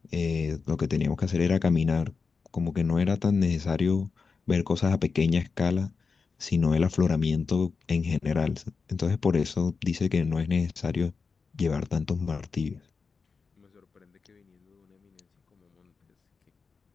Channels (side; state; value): right; quieter; 4.9 dB